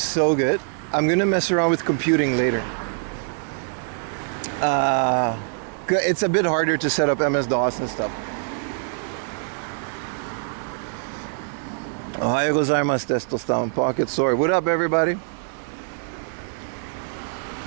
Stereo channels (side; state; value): left; silent; 63 dB below the other